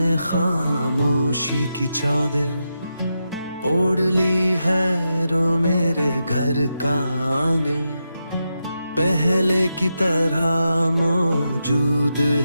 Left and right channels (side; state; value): both; inverted; correlation -0.87